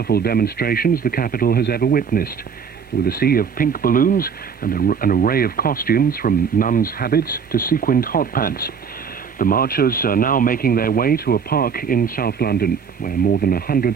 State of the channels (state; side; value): quieter; left; 6.6 dB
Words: demonstrations the capital has ever witnessed, with a sea of pink balloons and an array of costumes from nuns' habits to sequined hot pants. The marchers are now making their way to a park in South London, where more than